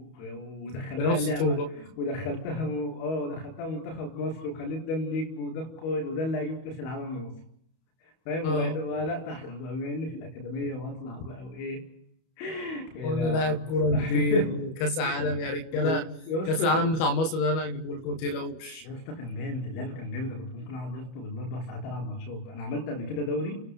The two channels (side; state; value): right; late; 31 ms